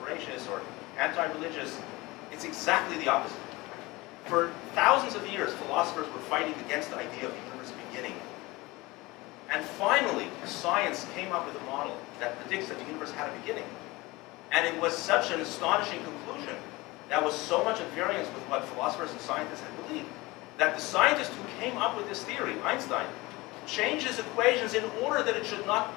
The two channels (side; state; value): right; quieter; 21.8 dB